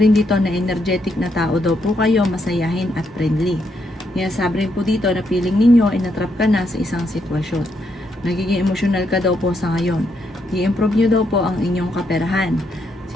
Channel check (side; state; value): both; normal; correlation 0.78